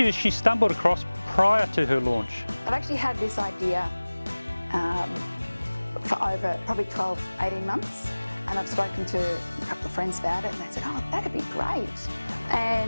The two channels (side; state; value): both; inverted; correlation -1.00